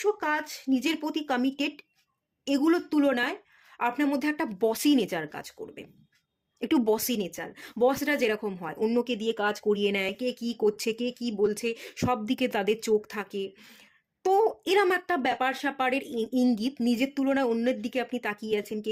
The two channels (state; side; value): identical; both; correlation 1.00